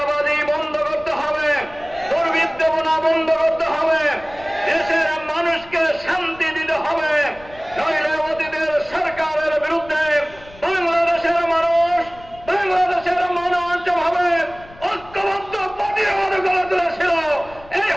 বন্ধ করতে হবে, দুর্বৃত্তনা বন্ধ করতে হবে, দেশের মানুষকে শান্তি দিতে হবে। নইলে অতীতের সরকারের বিরুদ্ধে বাংলাদেশের মানুষ যেভাবে ঐক্যবদ্ধ প্রতিরোধ গড়ে তুলেছিল, এই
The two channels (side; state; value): left; noise; rumble, 22 dB below the sound